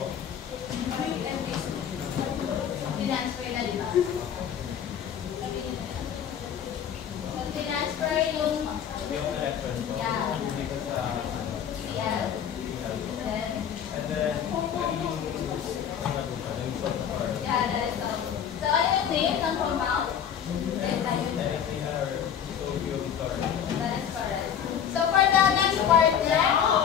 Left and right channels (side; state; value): right; quieter; 8.6 dB